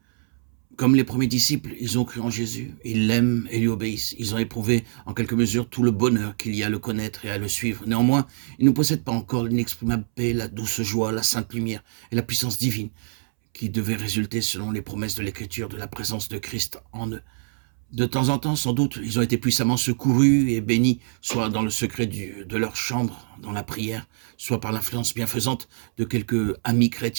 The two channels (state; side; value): silent; left; 62 dB below the other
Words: Comme les premiers disciples, ils ont cru en Jésus, ils l'aiment et lui obéissent. Ils ont éprouvé en quelque mesure tout le bonheur qu'il y a à le connaître et à le suivre. Néanmoins, ils ne possèdent pas encore l'inexprimable paix, la douce joie, la sainte lumière et la puissance divine qui devaient résulter selon les promesses de l'Écriture de la présence de Christ en eux. De temps en temps, sans doute, ils ont été puissamment secourus et bénis, soit dans le secret de leur chambre, dans la prière, soit par l'influence bienfaisante de quelques amis